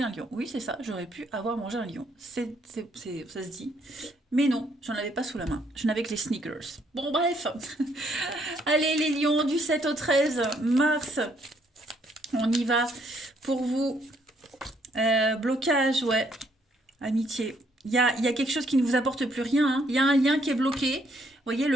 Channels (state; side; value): normal; both; correlation 0.69